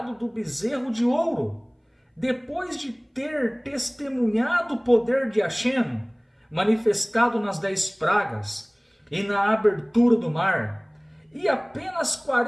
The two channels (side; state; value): both; identical; correlation 1.00